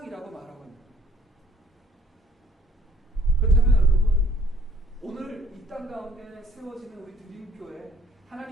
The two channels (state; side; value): normal; both; correlation 0.60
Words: 말하고 있습니다. 그렇다면 여러분 오늘 이 땅 가운데 세워지는 우리 드림교회